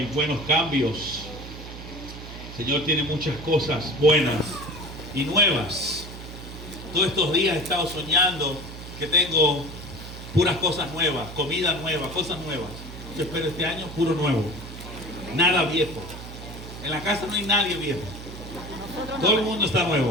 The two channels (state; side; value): noise; right; hum, 12 dB below the sound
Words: buenos cambios. El Señor tiene muchas cosas buenas y nuevas. Todos estos días he estado soñando que tengo puras cosas nuevas, comida nueva, cosas nuevas. Yo espero este año puro nuevo, nada viejo. En la casa no hay nadie viejo. Todo el mundo está